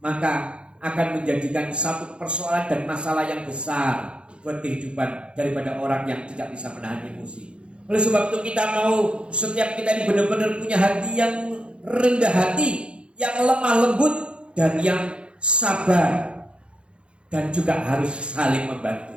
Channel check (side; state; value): left; late; 0.057 ms